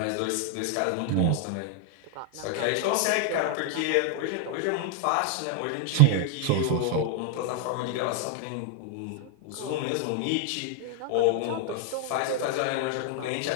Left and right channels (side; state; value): both; different; correlation 0.00